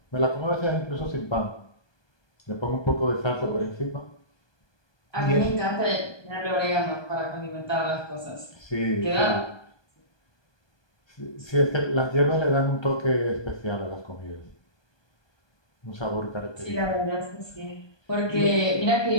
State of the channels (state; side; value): late; right; 1.2 ms